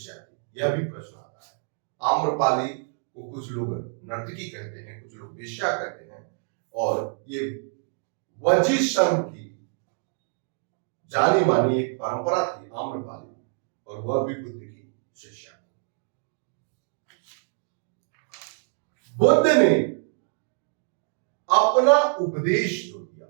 थी। यह भी प्रश्न आता है। आम्रपाली को कुछ लोग नर्तकी कहते हैं, कुछ लोग वेश्या कहते हैं, और ये वजी संघ की जानी मानी एक परंपरा थी आम्रपाली, और वह भी बुद्ध की शिष्या थी। बुद्ध ने अपना उपदेश जो दिया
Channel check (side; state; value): left; silent; 59 dB below the other